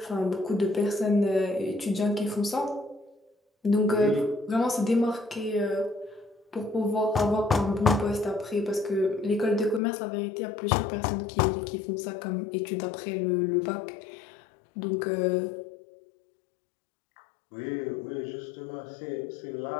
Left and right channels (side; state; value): right; drops out; at 9.8 s